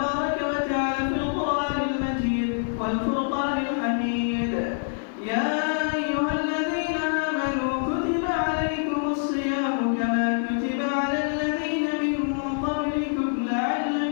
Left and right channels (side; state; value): right; silent; 56 dB below the other